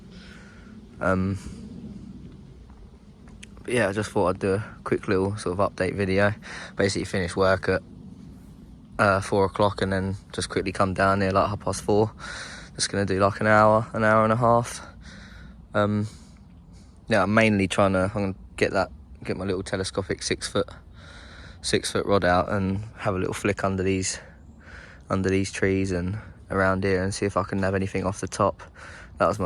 But yeah, I just thought I'd do a quick little sort of update video. Basically finished work at 4 o'clock and then just quickly come down here like 4:30. Just gonna do like an hour and a half. Yeah, I'm mainly I'm gonna get my little telescopic 6 foot rod out and have a little flick under these trees and around here and see if I can nab anything off the top. That was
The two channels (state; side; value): identical; both; correlation 1.00